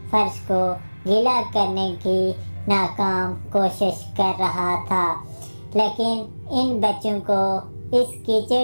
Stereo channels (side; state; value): both; inverted; correlation -1.00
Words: فرش کو گیلا کرنے کی ناکام کوشش کر رہا تھا۔ لیکن ان بچوں کو اس